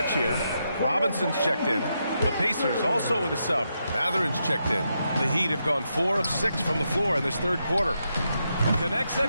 here. Robinson's checked in. The Pacers also with a sub. Matherin's checked in. The Heat have gone 4 of 6 from the floor in this 3rd quarter. Connects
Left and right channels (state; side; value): inverted; both; correlation -0.83